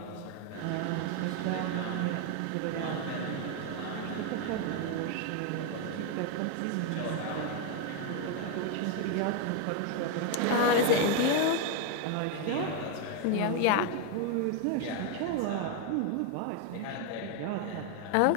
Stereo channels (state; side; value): different; both; correlation 0.01